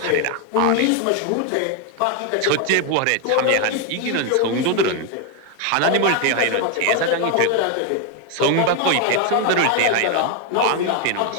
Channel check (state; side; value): different; both; correlation 0.01